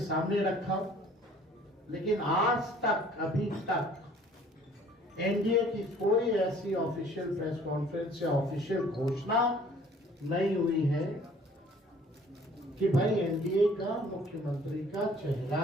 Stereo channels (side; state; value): both; normal; correlation 0.54